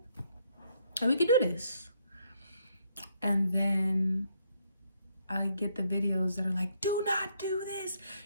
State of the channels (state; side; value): inverted; both; correlation -0.72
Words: And we can do this. And then I get the videos that are like, do not do this.